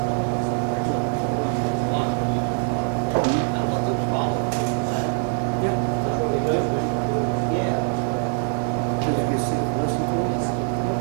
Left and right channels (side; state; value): left; silent; 63 dB below the other